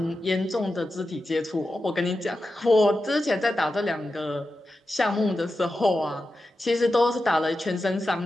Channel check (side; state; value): both; normal; correlation 0.91